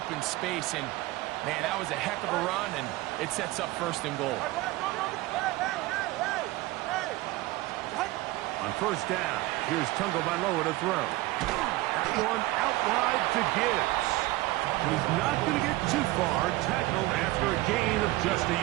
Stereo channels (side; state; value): left; quieter; 18.9 dB